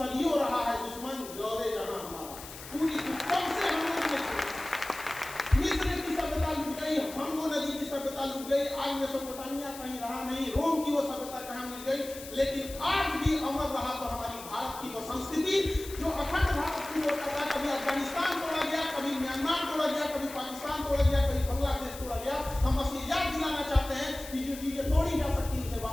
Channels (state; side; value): noise; left; hiss, 14 dB below the sound